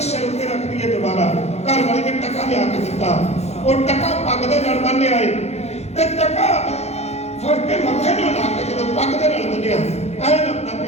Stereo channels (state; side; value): late; right; 0.31 ms